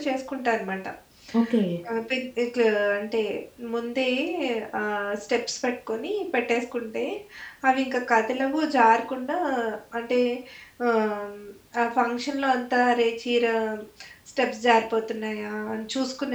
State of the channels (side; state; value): both; identical; correlation 1.00